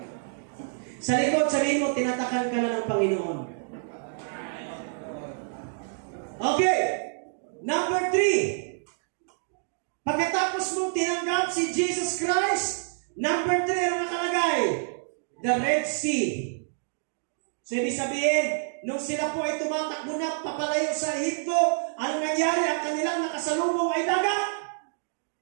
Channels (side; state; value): left; silent; digital silence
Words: Sa likod, sabihin mo, tinatakan ka na ng Panginoon. Okay. Number 3. Pagkatapos mong tinanggap si Jesus Christ, number 3 ang nakalagay, the Red Sea. So, ibig sabihin, nung sila po ay tumatakbo na papalayo sa Ehipto, ano nangyari? Ang kanilang nakasalubong ay dagat.